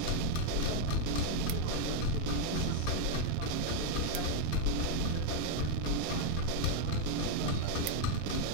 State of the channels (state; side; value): different; both; correlation 0.01